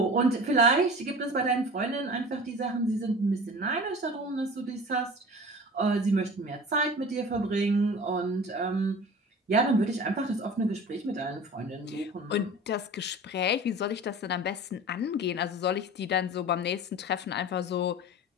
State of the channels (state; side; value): normal; both; correlation 0.38